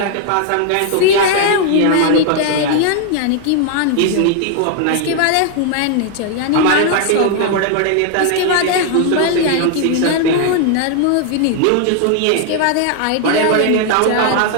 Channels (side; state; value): both; different; correlation 0.00